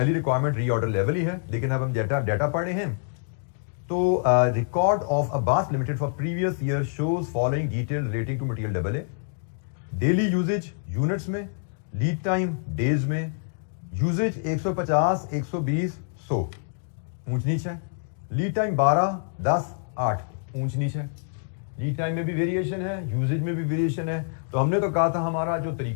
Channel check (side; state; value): right; silent; digital silence